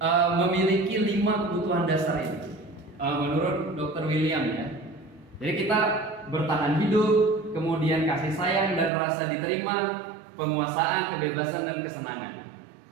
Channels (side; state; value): left; drops out; at 8.9 s